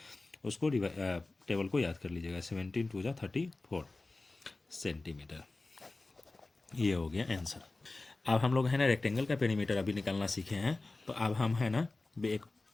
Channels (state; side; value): quieter; right; 3.3 dB